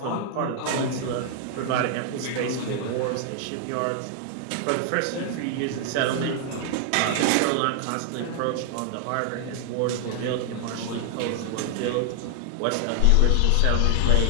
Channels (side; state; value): both; different; correlation 0.00